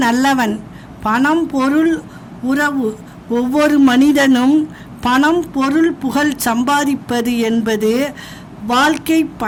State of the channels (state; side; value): identical; both; correlation 1.00